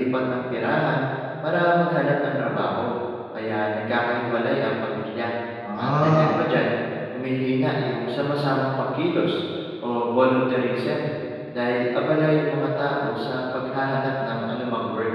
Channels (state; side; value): identical; both; correlation 1.00